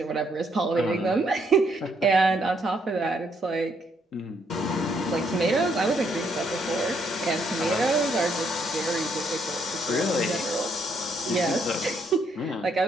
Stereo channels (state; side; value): normal; both; correlation 0.72